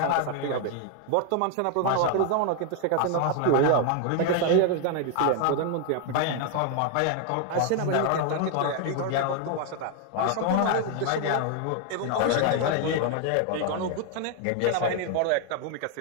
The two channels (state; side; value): different; both; correlation 0.00